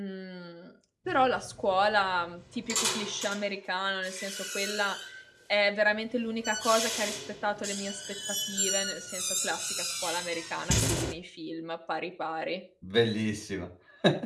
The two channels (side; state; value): both; identical; correlation 1.00